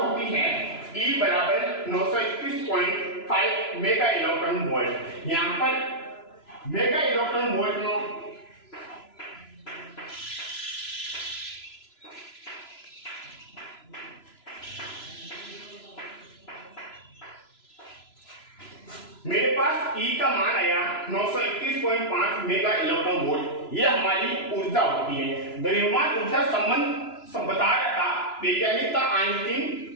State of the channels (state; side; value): late; right; 3.0 ms